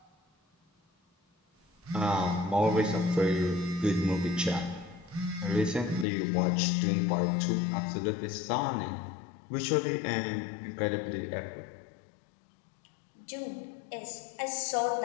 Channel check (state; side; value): drops out; right; at 6.1 s